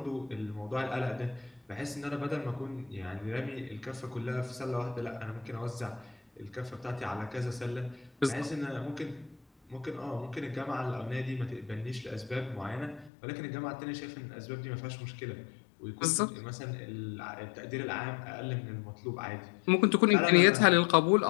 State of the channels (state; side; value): drops out; right; at 13.1 s